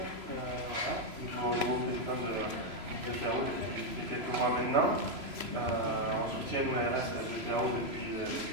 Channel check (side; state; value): left; late; 3.0 ms